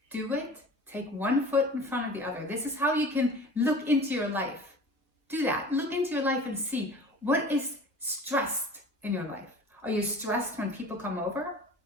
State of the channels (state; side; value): normal; both; correlation 0.41